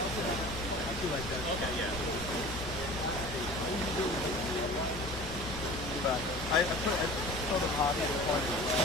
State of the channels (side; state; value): both; normal; correlation 0.40